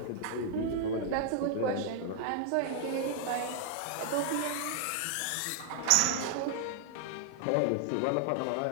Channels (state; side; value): different; both; correlation 0.00